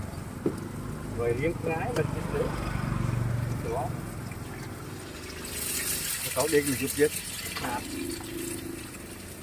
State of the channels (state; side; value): identical; both; correlation 1.00